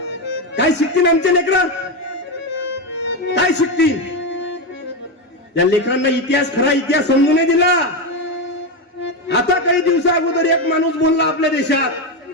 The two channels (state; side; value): normal; both; correlation 0.11